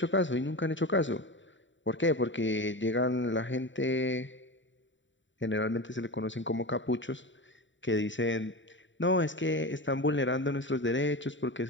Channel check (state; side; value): late; right; 0.54 ms